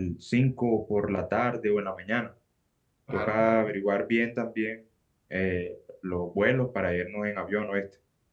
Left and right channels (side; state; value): both; identical; correlation 1.00